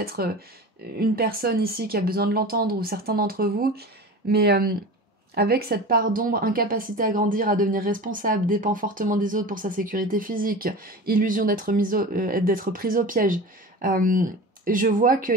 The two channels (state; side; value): normal; both; correlation 0.33